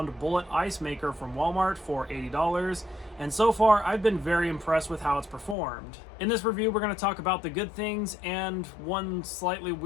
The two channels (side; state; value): right; drops out; at 5.6 s